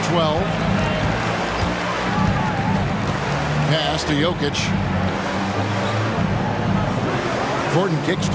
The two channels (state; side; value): identical; both; correlation 1.00